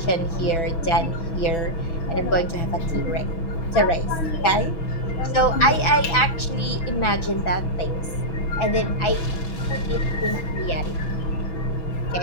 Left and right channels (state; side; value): late; right; 6.1 ms